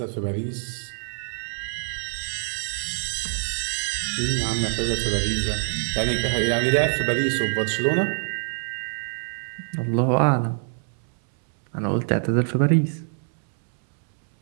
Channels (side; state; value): left; silent; 62 dB below the other